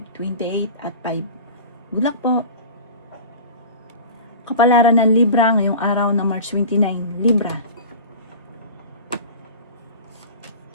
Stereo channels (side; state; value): both; inverted; correlation -0.36